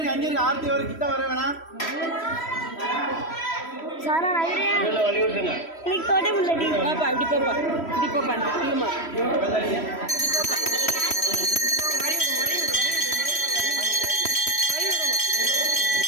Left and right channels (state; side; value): late; right; 3.1 ms